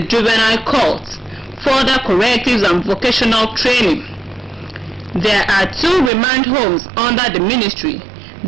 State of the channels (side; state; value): left; drops out; at 6.1 s